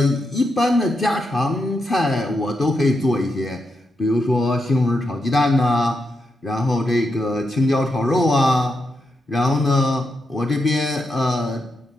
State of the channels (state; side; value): normal; both; correlation 0.84